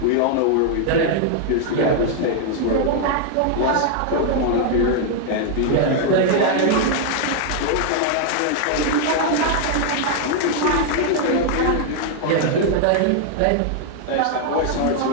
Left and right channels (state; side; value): different; both; correlation 0.00